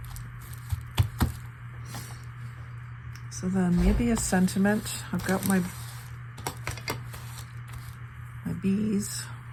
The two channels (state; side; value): identical; both; correlation 1.00